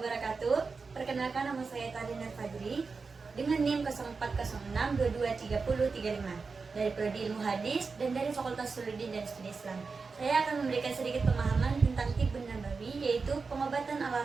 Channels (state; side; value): quieter; left; 4.6 dB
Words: Perkenalkan, nama saya Tadina Fadri dengan NIM 0406223035 dari Prodi Ilmu Hadis dan dari Fakultas Suluddin dan Studi Islam. Saya akan memberikan sedikit pemahaman tentang Tibbun Nabawi, yaitu pengobatan ala